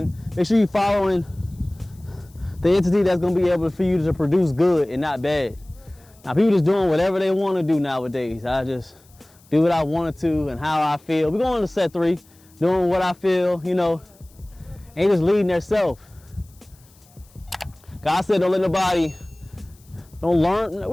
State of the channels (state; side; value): noise; left; hiss, 29 dB below the sound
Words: make sure you're following the entity that's going to be able for you to produce good and not bad. Now, people just doing whatever they want to do nowadays. I just do what I wanted to and how I feel. We're going to set 3, doing what I feel, ain't just leading themselves. God said don't let nobody, don't learn, what